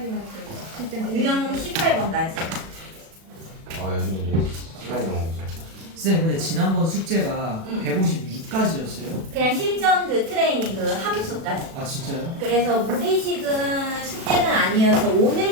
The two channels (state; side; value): late; left; 36 ms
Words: 실제 유형 18번까지. 아 요즘 이제 시간이 너무 없어요. 쌤 근데 지난번 숙제가 응. 156까지였어요? 그냥 실전 그 트레이닝 그 함수까지. 아 진짜요? 그래서 무리식은 숙제는 아니어서